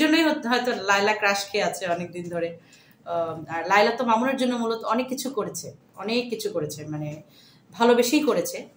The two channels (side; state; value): both; identical; correlation 1.00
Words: জন্যই হয়তো লায়লা ক্রাশ খেয়ে আছে অনেকদিন ধরে আর লায়লা তো মামুনের জন্য মূলত অনেক কিছু করেছে মানে ভালোবেসেই করেছে